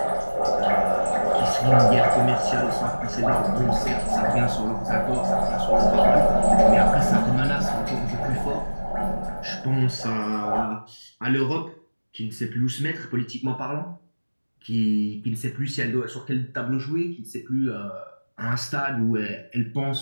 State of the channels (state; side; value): inverted; both; correlation -1.00